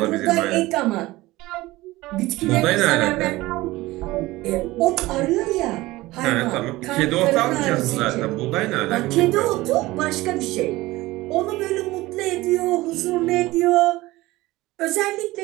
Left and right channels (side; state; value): left; quieter; 19.0 dB